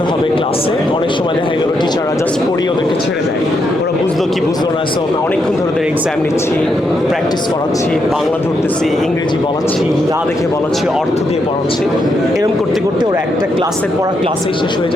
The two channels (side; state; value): both; normal; correlation 0.80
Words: হবে ক্লাসে। অনেক সময় দেখা গেল টিচাররা জাস্ট পড়িয়ে ওদেরকে ছেড়ে দেয়, ওরা বুঝলো কি বুঝলো না। সো অনেকক্ষণ ধরে ওদের এক্সাম নিচ্ছি, প্র্যাকটিস করাচ্ছি, বাংলা ধরতেছি, ইংরেজি বলাচ্ছি, না দেখে বলাচ্ছি, অর্থ দিয়ে পড়াচ্ছি। এরকম করতে করতে ওরা একটা ক্লাসের পড়া ক্লাসেই শেষ হয়ে